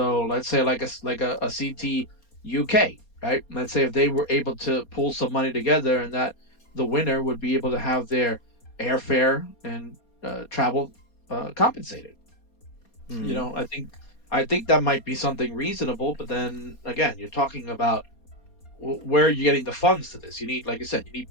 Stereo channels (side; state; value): right; late; 4.2 ms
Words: let's say like a CT UK, right? Let's say if they were able to pull some money together, and that the winner would be able to have their airfare and travel compensated. Mm-hmm. I think that might be something reasonable. But then again, you're talking about where are you getting the funds to this? You need, like I said, you need